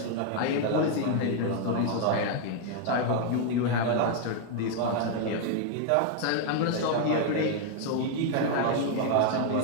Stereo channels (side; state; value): both; different; correlation 0.00